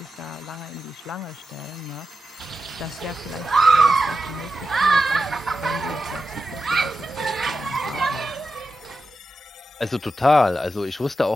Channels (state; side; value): normal; both; correlation 0.90